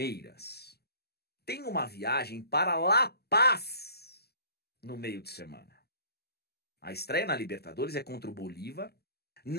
tem uma viagem para La Paz no meio de semana. A estreia na Libertadores é contra o Bolívar,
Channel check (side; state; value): right; late; 0.46 ms